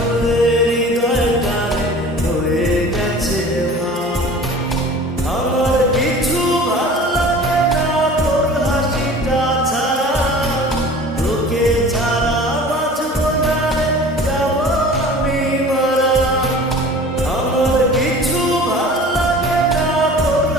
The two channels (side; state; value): both; normal; correlation 0.43